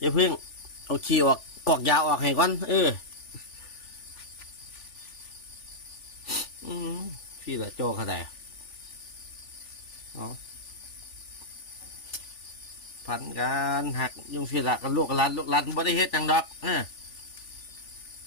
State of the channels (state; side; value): late; right; 3.4 ms